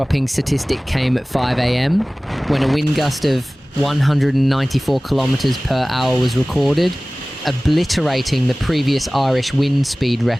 statistic came at 5 a.m. when a wind gust of 194 kilometres per hour was recorded, obliterating the previous Irish wind speed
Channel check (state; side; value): normal; both; correlation 0.98